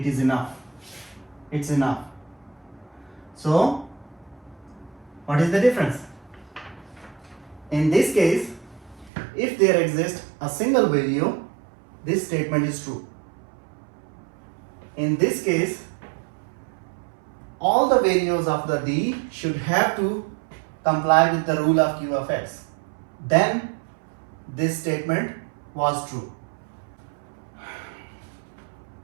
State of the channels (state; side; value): drops out; left; at 9.1 s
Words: is enough. It's enough. So, what is the difference? In this case, if there exists a single value, this statement is true. In this case, all the values of the D should have to comply with the rule of q of x. Then this statement was true.